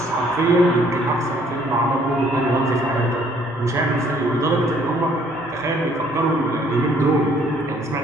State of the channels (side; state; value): both; normal; correlation 0.62